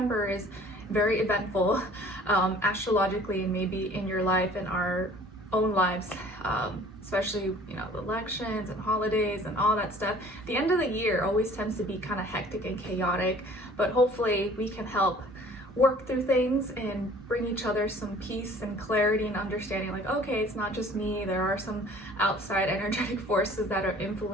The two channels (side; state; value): both; normal; correlation 0.51